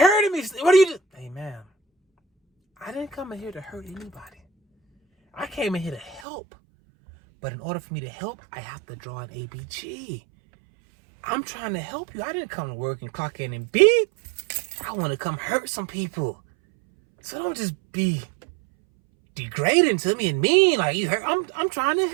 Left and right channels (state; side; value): drops out; left; at 6.2 s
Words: me. What are you doing? Hey, ma'am, I didn't come in here to hurt anybody. I came in here to help. But in order for me to help, I have to draw an ABG. I'm trying to help you. I didn't come to work and clock in and beep. I want to come hurt some people. So don't just be degrading to me and mean like you hurt. I'm trying to